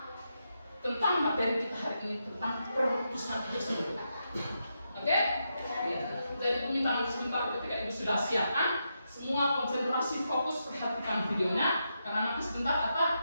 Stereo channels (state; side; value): inverted; both; correlation -0.84